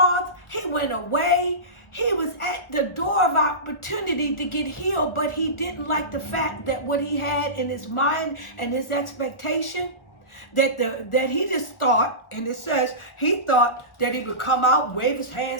He went away. He was at the door of opportunity to get healed, but he didn't like the fact that what he had in his mind and his expectation, that he just thought, and it says he thought that he would come out, wave his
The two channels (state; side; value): late; right; 1.4 ms